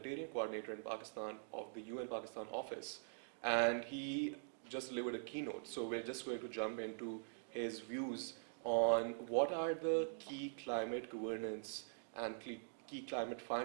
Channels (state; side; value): silent; left; digital silence